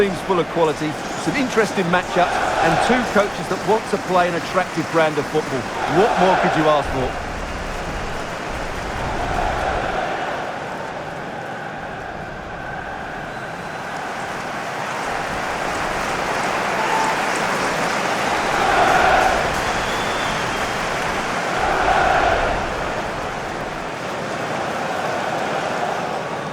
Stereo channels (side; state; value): both; identical; correlation 1.00